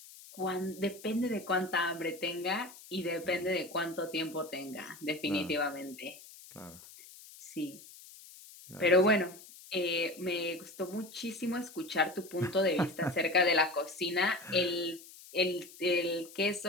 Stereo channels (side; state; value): left; noise; hiss, 19 dB below the sound